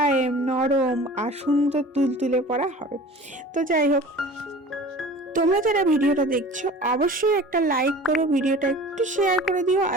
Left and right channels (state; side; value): normal; both; correlation 0.41